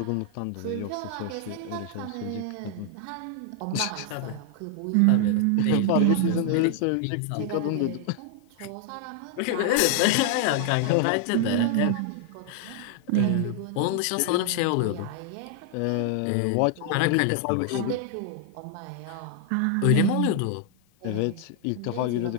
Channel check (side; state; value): both; different; correlation 0.00